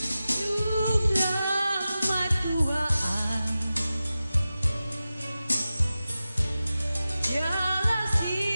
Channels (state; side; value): inverted; both; correlation -0.94